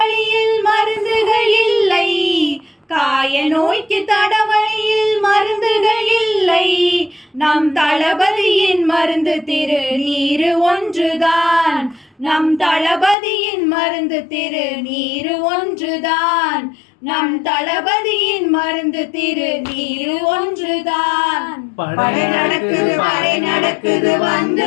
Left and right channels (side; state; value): right; drops out; at 13.2 s